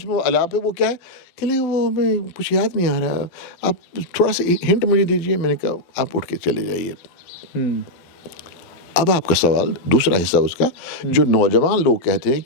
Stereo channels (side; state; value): right; late; 12 ms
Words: वो अलाप है, वो क्या है? कि नहीं वो मैं कुछ याद नहीं आ रहा, आप थोड़ा सा हिंट मुझे दीजिए। मैंने कहा आप उठ के चले जाइए। अब आपका सवाल, दूसरा हिस्सा उसका, जो नौजवान लोग कहते हैं